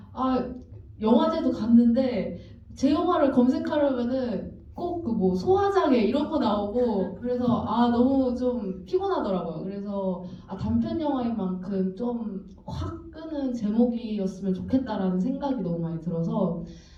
영화제도 갔는데 제 영화를 검색하려면은 꼭 그 뭐 소화장애 이런 거 나오고 그래서 너무 좀 피곤하더라고요. 그래서 단편 영화인 만큼 좀 확 끄는 제목이었으면 좋겠다라는 생각이 너무 많이 들어서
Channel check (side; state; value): both; identical; correlation 1.00